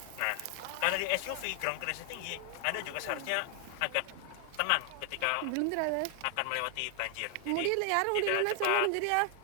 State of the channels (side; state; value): both; different; correlation 0.00